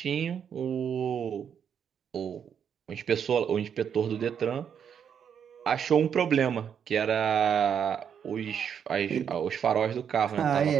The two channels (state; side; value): quieter; left; 7.9 dB